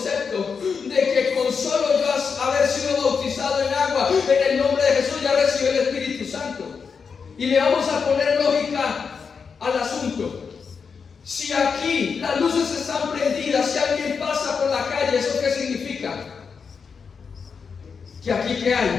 de que con solo yo haber sido bautizado en agua, en el nombre de Jesús ya recibí el Espíritu Santo. Y le vamos a poner lógica al asunto. Si aquí las luces están prendidas, si alguien pasa por la calle, ¿eso qué significa? Que aquí ¿qué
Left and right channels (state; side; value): quieter; right; 5.8 dB